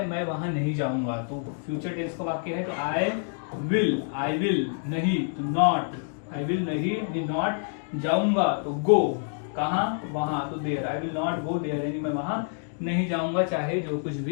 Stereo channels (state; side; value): silent; right; 60 dB below the other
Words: मैं वहां नहीं जाऊंगा। तो फ्यूचर टेंस का वाक्य है तो आई विल नहीं, तो नॉट, आई विल नहीं नॉट, जाऊंगा तो गो, कहाँ वहां, तो देर, आई विल नॉट गो देर यानी मैं वहां नहीं जाऊंगा, चाहे जो कुछ